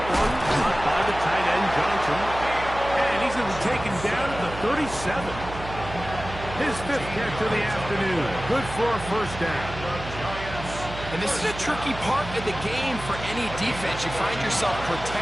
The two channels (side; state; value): right; noise; hum, 11 dB below the sound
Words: one caught by the tight end Johnson. And he's going to be taken down at the 37. His 5th catch of the afternoon. Good for a first down. And this is a tricky part of the game for any defense. You find yourself